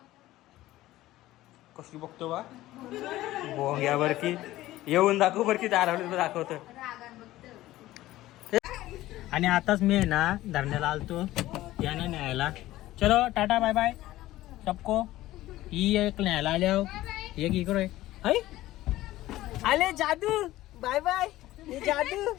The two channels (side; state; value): right; quieter; 16.0 dB